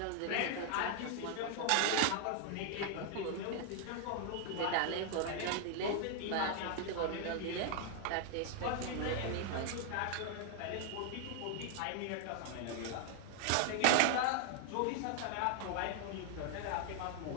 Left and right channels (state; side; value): different; both; correlation 0.00